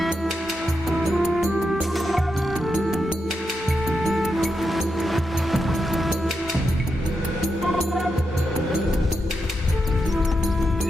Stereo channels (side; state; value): both; normal; correlation 0.85